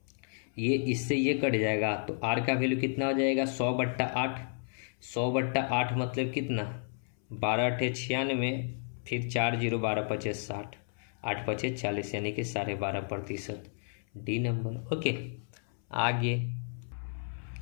ये इससे ये कट जाएगा। तो R का वैल्यू कितना हो जाएगा, 100/8। 100/8 मतलब कितना, 12 × 96, फिर 4 0 12 5 60, 8 5 40 यानी कि 12.5%, डी नंबर, ओके। आगे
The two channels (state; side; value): silent; right; 56 dB below the other